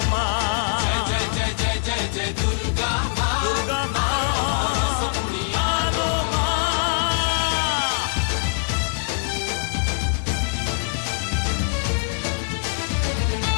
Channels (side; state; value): right; silent; digital silence